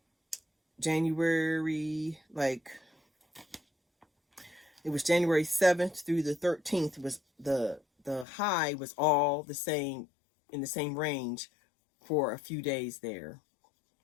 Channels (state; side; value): drops out; right; at 8.2 s